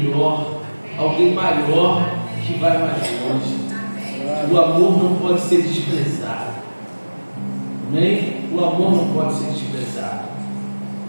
alguém maior, que vai mais longe. O amor não pode ser desprezado. Amém? O amor não pode ser desprezado.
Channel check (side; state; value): both; inverted; correlation -1.00